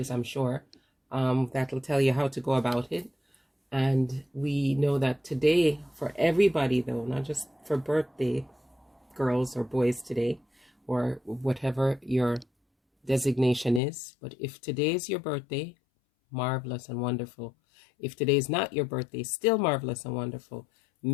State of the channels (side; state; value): right; drops out; at 13.8 s